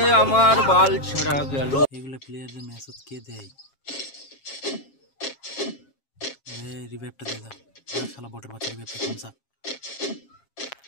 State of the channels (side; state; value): right; late; 7.4 ms